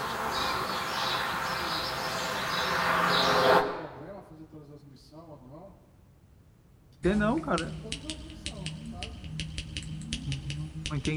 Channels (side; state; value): both; identical; correlation 1.00